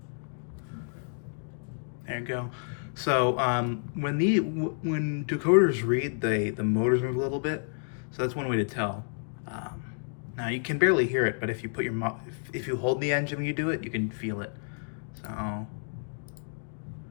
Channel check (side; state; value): right; silent; digital silence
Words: There you go. So when decoders read, the motors move a little bit, so that's one way to tell. Now you can barely hear it, but if you put if you hold the engine when you do it, you can feel it. So